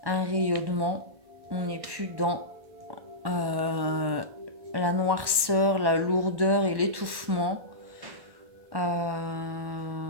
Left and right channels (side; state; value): left; late; 1.1 ms